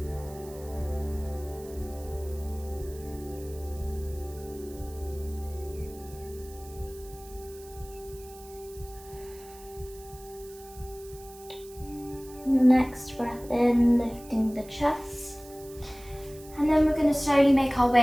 Next breath in, lifting the chest. And then we're going to slowly make our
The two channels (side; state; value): right; noise; hiss, 20 dB below the sound